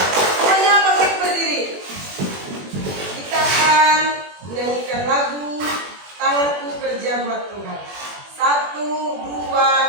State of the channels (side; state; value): left; late; 21 ms